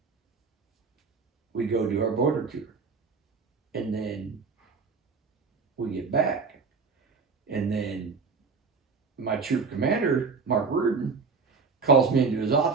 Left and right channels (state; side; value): quieter; left; 4.8 dB